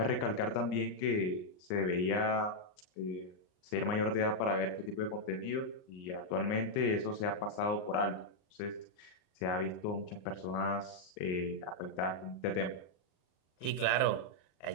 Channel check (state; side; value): late; right; 39 ms